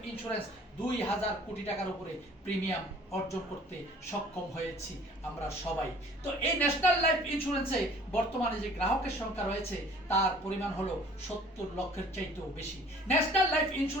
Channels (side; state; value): both; normal; correlation 0.52